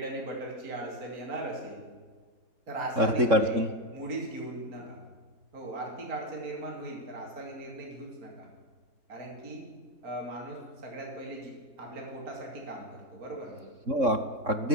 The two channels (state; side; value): late; left; 3.6 ms